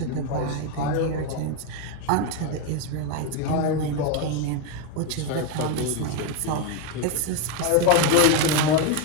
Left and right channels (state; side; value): different; both; correlation 0.02